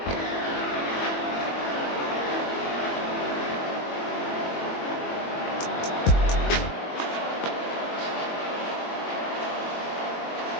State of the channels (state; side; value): late; right; 21 ms